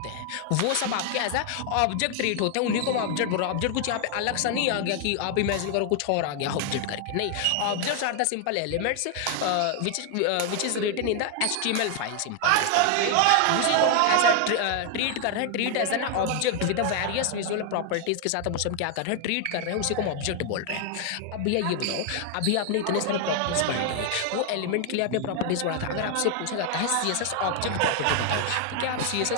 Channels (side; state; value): both; different; correlation 0.00